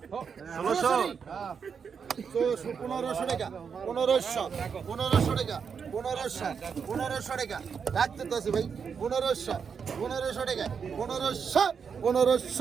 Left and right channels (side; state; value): left; quieter; 6.4 dB